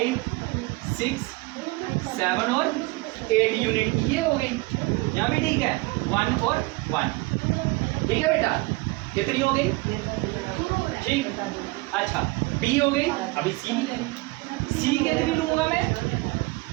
6 7 और 8 यूनिट की ये हो गई। यहाँ भी ठीक है, 1 और 1, ठीक है बेटा। कितनी हो गई? ठीक। अच्छा बी हो गई, अभी सी भी ले। सी कितनी लूंगा मैं?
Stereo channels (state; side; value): quieter; left; 23.5 dB